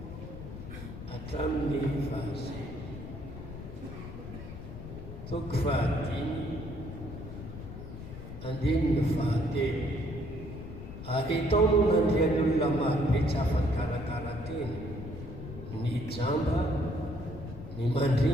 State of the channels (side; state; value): left; noise; rumble, 11 dB below the sound